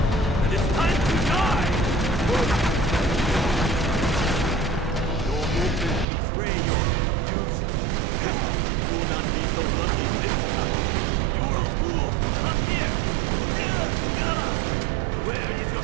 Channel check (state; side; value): drops out; left; at 6.1 s